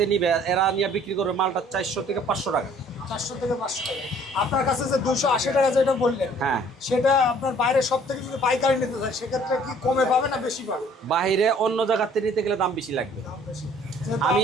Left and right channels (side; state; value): both; normal; correlation 0.56